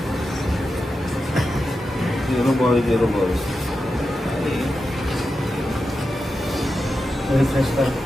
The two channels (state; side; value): normal; both; correlation 0.90